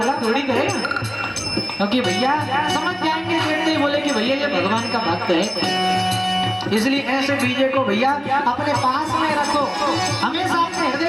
थोड़ी करेगा। क्योंकि भैया समझ जाएंगे, देखते ही बोले कि भैया ये भगवान का भक्त है। इसलिए ऐसे बीजे को भैया अपने पास में रखो, हमेशा अपने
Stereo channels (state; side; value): identical; both; correlation 1.00